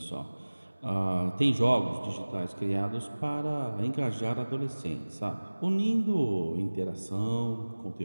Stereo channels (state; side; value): inverted; both; correlation -1.00